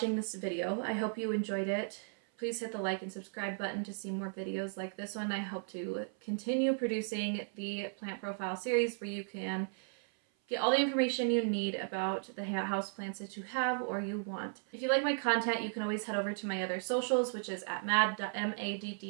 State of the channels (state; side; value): silent; left; 54 dB below the other